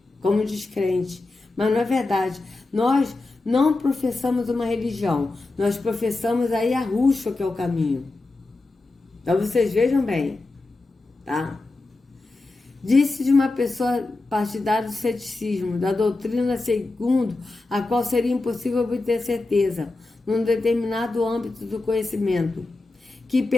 como descrentes. Mas não é verdade. Nós não professamos uma religião, nós professamos a Yahushua, que é o caminho. Então vocês vejam bem, tá? Disse de uma pessoa partidária do ceticismo, da doutrina segundo a qual seria impossível obter certeza, num determinado âmbito do conhecimento, que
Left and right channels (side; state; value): right; quieter; 3.2 dB